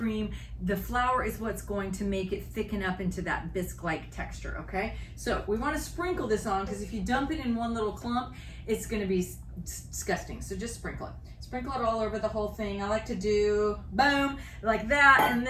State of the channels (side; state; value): both; identical; correlation 1.00